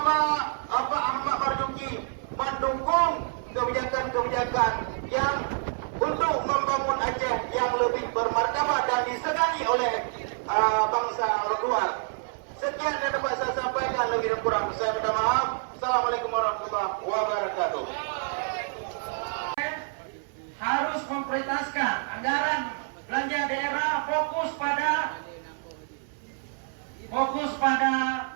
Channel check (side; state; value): left; silent; 60 dB below the other